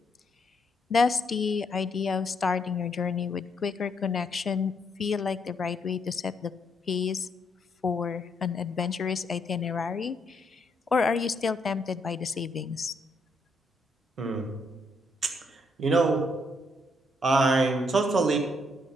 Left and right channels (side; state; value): both; normal; correlation 0.74